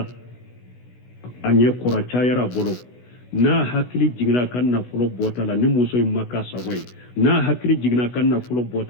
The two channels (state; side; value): late; right; 16 ms